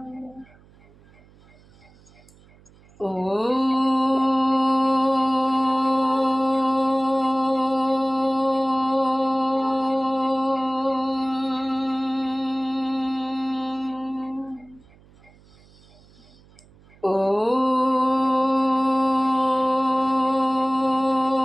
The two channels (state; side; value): noise; right; hum, 27 dB below the sound